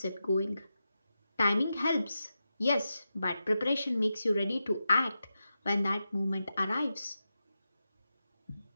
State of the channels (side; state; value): both; inverted; correlation -0.90